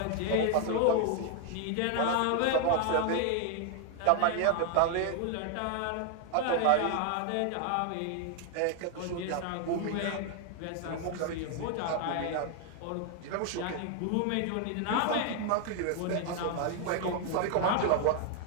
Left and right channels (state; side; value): different; both; correlation 0.00